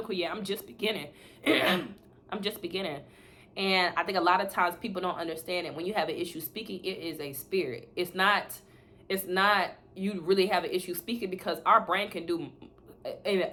yet. I'm just beginning. I'm just beginning. And I think a lot of times people don't understand it. When you have an issue speaking, it is a spirit. It's not you really have an issue speaking, because our brain can do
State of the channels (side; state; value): both; identical; correlation 1.00